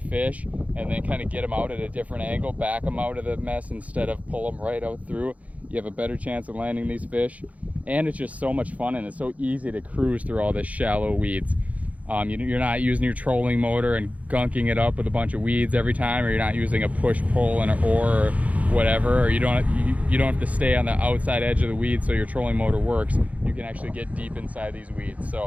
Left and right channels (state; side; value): late; left; 0.069 ms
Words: and then kind of get them out at a different angle, back them out of the mess instead of pull them right out through, you have a better chance of landing these fish. And it's just so much fun, and it's so easy to cruise through all this shallow weeds. You're not using your trolling motor and gunking it up with a bunch of weeds every time, or you're not using a push-pull and an oar or whatever, or you don't have to stay on the outside edge of the weeds so your trolling motor works. You can actually get deep inside these weeds.